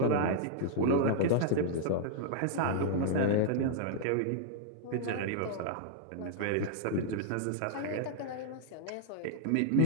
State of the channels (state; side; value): different; both; correlation -0.01